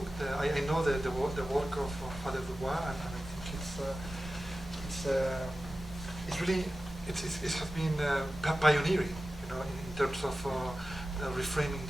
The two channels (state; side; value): normal; both; correlation 0.94